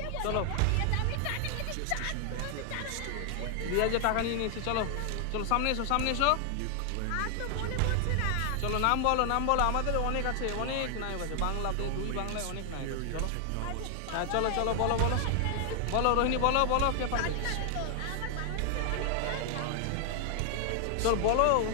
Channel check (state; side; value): different; both; correlation 0.00